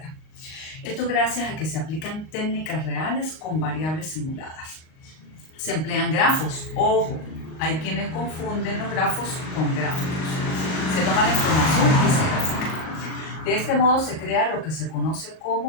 Esto gracias a que se aplican técnicas reales con variables simuladas. Se emplean grafos. Ojo, hay quienes confunden los grafos con gráficos. Se toma la información y se grafica. De este modo se crea lo que se conoce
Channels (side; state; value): right; late; 38 ms